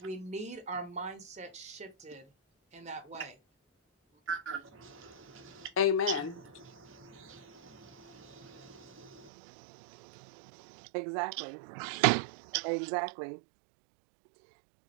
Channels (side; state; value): left; drops out; at 9.3 s